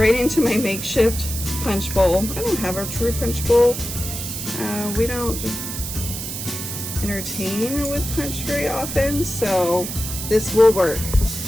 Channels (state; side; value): noise; right; hiss, 6 dB below the sound